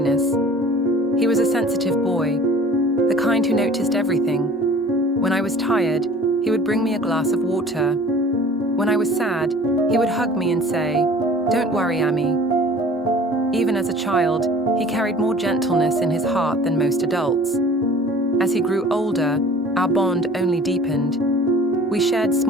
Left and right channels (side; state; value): both; normal; correlation 0.47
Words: He was a sensitive boy, the kind who noticed everything. When I was tired, he would bring me a glass of water. When I was sad, he would hug me and say, "Don't worry, Auntie." Even as a child, he carried more gentleness in his heart than most adults. As he grew older, our bond only deepened. We shared